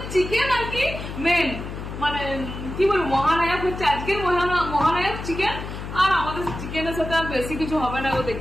চিকেন আর কি মেন, মানে কি বলবো, মহানায়ক হচ্ছে আজকের মহানায়ক চিকেন। আর আমাদের চিকেনের সাথে আর বেশি কিছু হবে না,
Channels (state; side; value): noise; left; hum, 8 dB below the sound